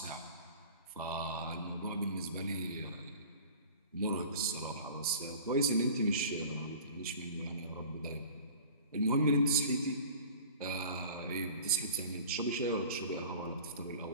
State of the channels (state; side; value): inverted; both; correlation -0.42